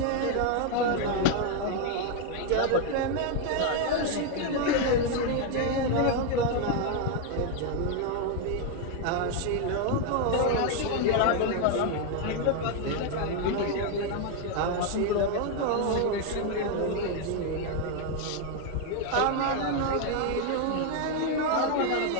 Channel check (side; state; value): both; different; correlation 0.01